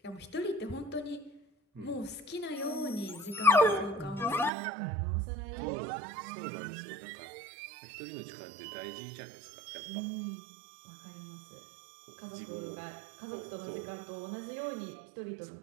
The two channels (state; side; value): drops out; left; at 4.5 s